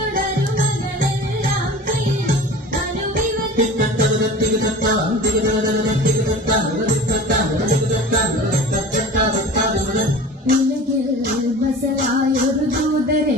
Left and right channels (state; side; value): normal; both; correlation 0.38